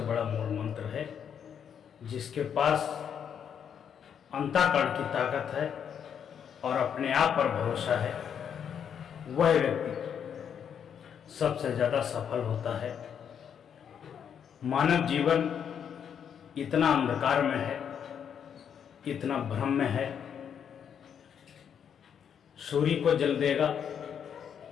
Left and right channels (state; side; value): quieter; right; 8.1 dB